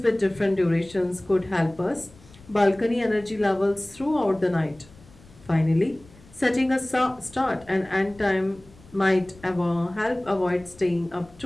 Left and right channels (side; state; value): left; noise; rumble, 24 dB below the sound